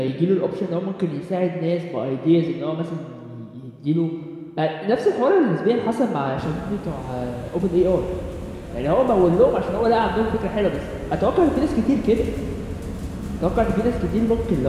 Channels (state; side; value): identical; both; correlation 1.00